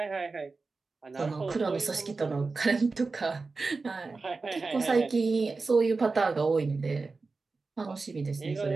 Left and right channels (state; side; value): quieter; left; 4.0 dB